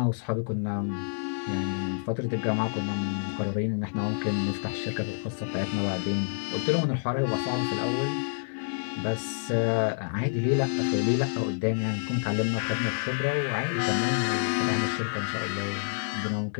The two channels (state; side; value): silent; right; digital silence